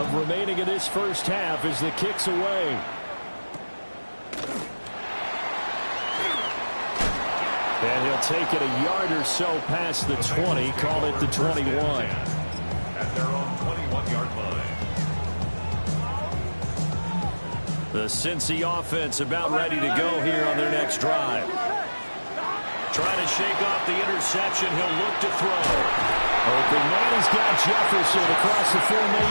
remaining in this first half as the kick's away. And he'll take it a yard or so past the 20, call it the 21. At their own 21-yard line. The Cincy offense about ready to go here on their next drive. Trying to shake off the interception. He'll look to throw. Open man, he's got Jefferson across the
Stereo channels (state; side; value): inverted; both; correlation -1.00